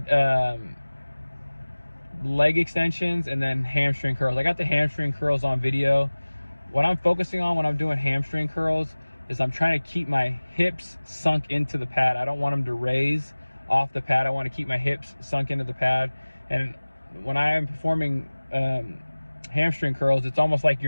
leg extensions and then hamstring curls. I got the hamstring curls on video. What I'm focusing on when I'm doing hamstring curls is I'm trying to keep my hips sunk into the pad. I don't want them to raise off the pad. I want to keep my hips sunk into the pad. And when I am performing hamstring curls, it's almost like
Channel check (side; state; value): both; inverted; correlation -1.00